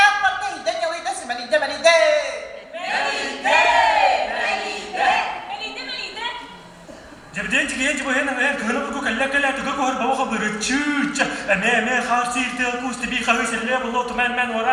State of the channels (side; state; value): both; identical; correlation 1.00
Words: neyden yalıydı simelide melide. Jabden jigen jibo hen hen kana bu kalla kalla to ko har bawa khabar chuch me kharsir te ku stibi khawi selle bollo to men